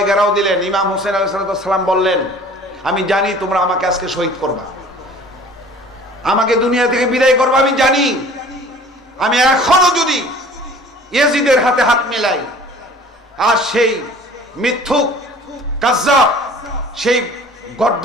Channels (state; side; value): normal; both; correlation 0.48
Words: ঘেরাও দিলেন। ইমাম হোসেন আলাইহিস সালাম বললেন, আমি জানি তোমরা আমাকে আজকে শহীদ করবা, আমাকে দুনিয়া থেকে বিদায় করবা, আমি জানি। আমি এখনো যদি ইয়াজিদের হাতে হাত মিলাই আর সেই মিথ্যুক কাজ্জাব, সেই